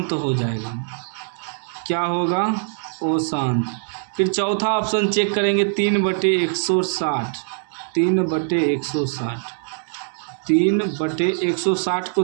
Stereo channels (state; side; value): silent; left; 64 dB below the other